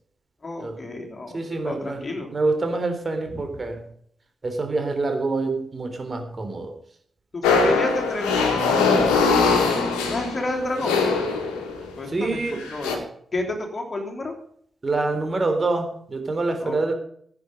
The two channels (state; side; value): normal; both; correlation 0.67